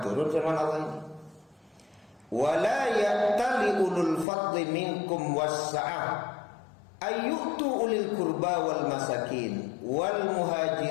turun firman Allah ini. Wala ya'tali ulul fadli minkum wassa'ah ayyutu ulil qurba wal masakin wal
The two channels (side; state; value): right; drops out; at 4.2 s